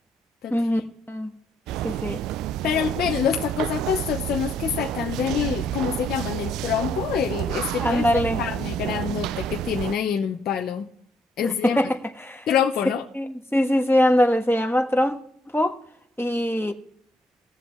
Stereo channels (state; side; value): normal; both; correlation 0.70